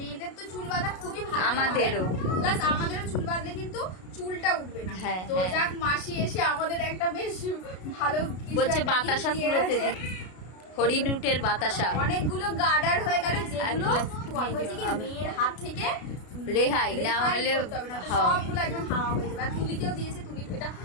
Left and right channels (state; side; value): late; right; 33 ms